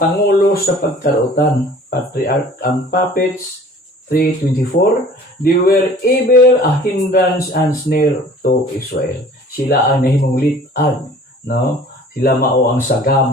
pangulo sa pagkarutan. Patriarchs and Prophets 3:24. They were ever a hindrance and snare to Israel. Sila ang nahimong litag, no? Sila mao ang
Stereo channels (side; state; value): both; normal; correlation 0.49